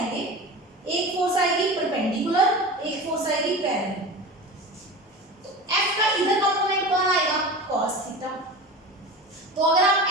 एक फोर्स आएगी परपेंडिकुलर, एक फोर्स आएगी पैरेलल। तो F का इधर कंपोनेंट कौन आएगा, cos थीटा। तो अगर आप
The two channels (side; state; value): both; normal; correlation 0.31